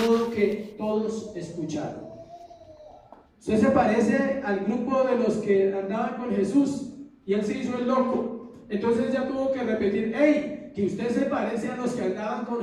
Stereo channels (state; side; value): identical; both; correlation 1.00